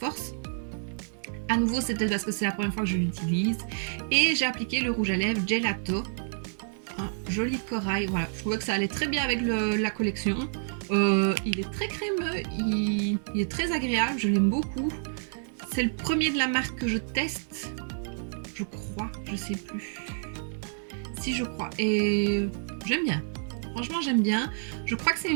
À nouveau, c'est peut-être parce que c'est la première fois que je l'utilise. Et j'ai appliqué le rouge à lèvres Gelato, un joli corail, voilà, je trouvais que ça allait très bien avec la collection. Il est très crémeux, il est très agréable, je l'aime beaucoup. C'est le premier de la marque que je teste, je crois, je sais plus. Si je crois, et j'aime bien. Franchement, j'aime bien. Je crois que c'est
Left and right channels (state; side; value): silent; left; digital silence